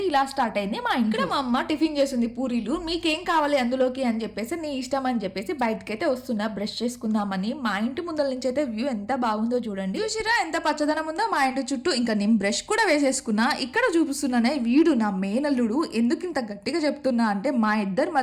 ఇలా స్టార్ట్ అయింది. మా ఇంట్లో మా అమ్మ టిఫిన్ చేసింది పూరీలు. మీకేం కావాలి అందులోకి అని చెప్పేసి నీ ఇష్టం అని చెప్పేసి బయటకైతే వస్తున్నా బ్రష్ చేసుకుందామని. మా ఇంటి ముందల నుంచి అయితే వ్యూ ఎంత బాగుందో చూడండి. చూసిరా ఎంత పచ్చదనం ఉందో మా ఇంటి చుట్టూ. ఇంకా నేను బ్రష్ కూడా వేసేసుకున్నా. ఇక్కడ చూపిస్తున్నానే వీడు నా మేనల్లుడు. ఎందుకు ఇంత గట్టిగా చెప్తున్నా అంటే మా ఇద్దరు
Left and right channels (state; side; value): identical; both; correlation 1.00